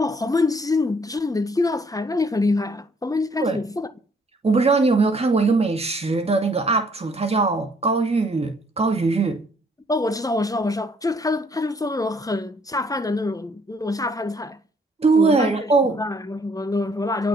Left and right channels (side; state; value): both; normal; correlation 0.64